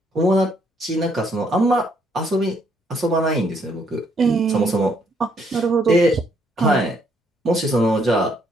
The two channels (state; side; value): normal; both; correlation 0.70